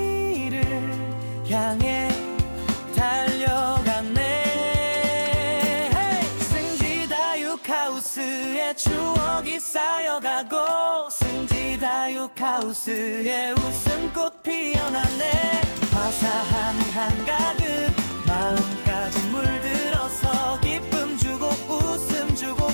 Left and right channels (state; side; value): inverted; both; correlation -1.00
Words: 향해 달려간 승지다육하우스의 추억이 쌓여가고 승지다육하우스의 웃음꽃 피어났네. 화사한 한가득 마음까지 물들어서 기쁨 주고 웃음 주고